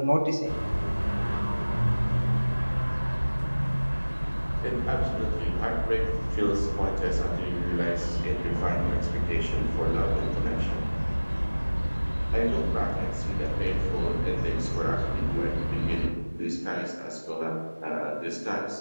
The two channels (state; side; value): inverted; both; correlation -1.00